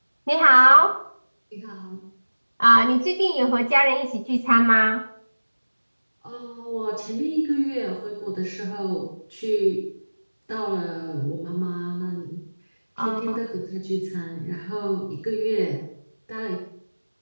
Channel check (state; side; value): inverted; both; correlation -1.00